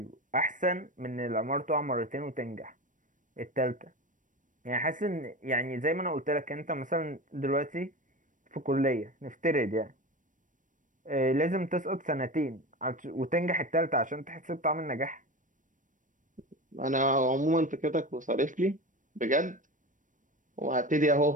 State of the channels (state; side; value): late; left; 0.38 ms